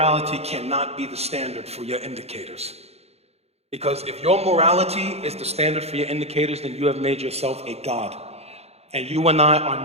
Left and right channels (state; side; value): late; left; 0.30 ms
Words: cannot be the standard for your indicators. Because if your morality is the standard for your indicators, then you have made yourself a God. And you and I are